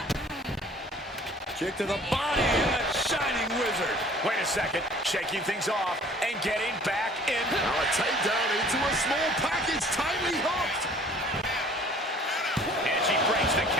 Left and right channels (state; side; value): normal; both; correlation 0.52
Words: Kick to the body and a shining wizard. Wait a second, shaking things off and getting back in. Now a takedown into a small package, tightly hooked. And she breaks the